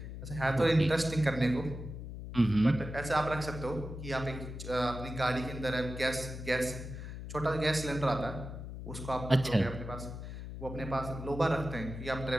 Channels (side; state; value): left; noise; hum, 9 dB below the sound